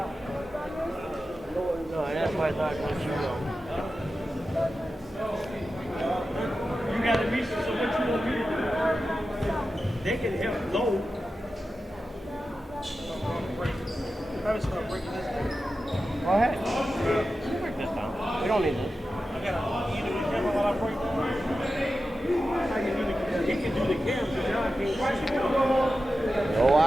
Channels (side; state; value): both; normal; correlation 0.92